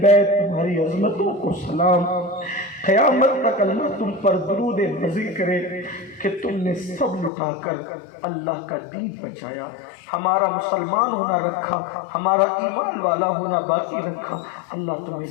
بیت تمہاری عظمتوں کو سلام، قیامت تک اللہ تم پر درود مزید کرے کہ تم نے سب لٹا کر اللہ کا دین بچایا، ہمارا مسلمان ہونا رکھا، ہمارا ایمان والا ہونا باقی رکھا۔ اللہ تمہیں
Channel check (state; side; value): drops out; right; at 7.3 s